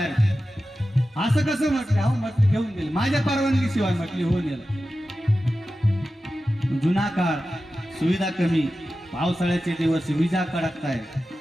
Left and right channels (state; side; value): normal; both; correlation 0.93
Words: असं कसं. म्हटले हो, म्हटले घेऊन गेले माझ्या परवानगी शिवाय. म्हटले हो नेलं. जुना काळ, सुविधा कमी, पावसाळ्याचे दिवस, विजा कडकताय,